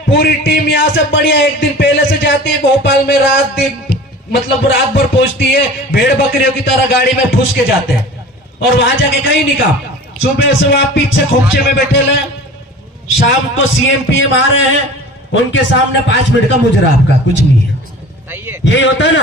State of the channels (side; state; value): both; normal; correlation 0.40